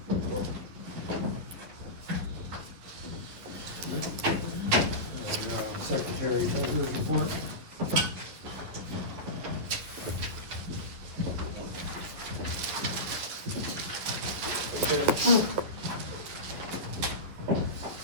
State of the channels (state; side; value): late; left; 11 ms